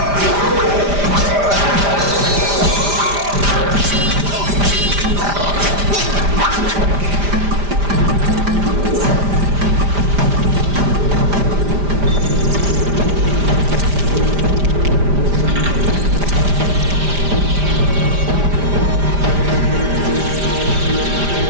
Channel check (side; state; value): left; late; 5.0 ms